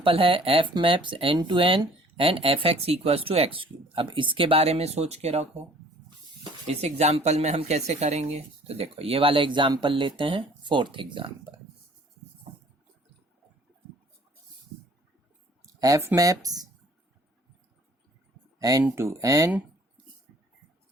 है f मैप्स n to n and fx equals to x cube. अब इसके बारे में सोच के रखो. इस एग्जाम्पल में हम कैसे करेंगे? तो देखो ये वाला एग्जाम्पल लेते हैं, फोर्थ एग्जाम्पल. f मैप्स n to n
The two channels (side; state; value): both; normal; correlation 0.54